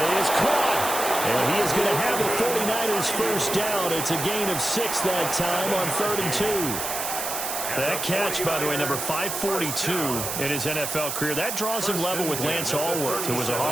is caught. And he is going to have the 49ers first down. It's a gain of 6 that time on 3rd and 2. That catch, by the way, number 542 in his NFL career. That draws him level with Lance Allworth, who was a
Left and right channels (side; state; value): right; noise; hiss, 3 dB below the sound